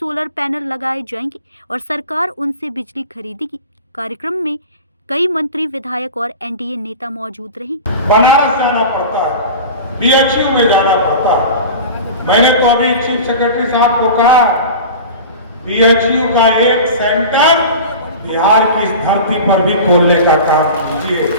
पैनल लगाए जाएंगे और सरकार उनसे बिजली खरीदेगी। कार्यक्रम में कई मंत्री, विधायक और NDA नेता मौजूद रहे। बनारस जाना पड़ता है, BHU में जाना पड़ता है। मैंने तो अभी चीफ सेक्रेटरी साहब को कहा BHU का एक सेंटर बिहार की इस धरती पर भी खोलने का काम कीजिए,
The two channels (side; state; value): both; inverted; correlation -0.33